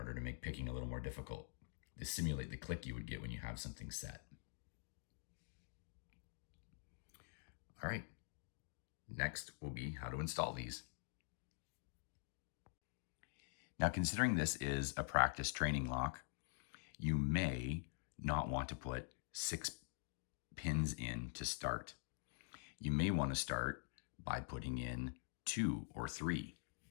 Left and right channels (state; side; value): silent; right; digital silence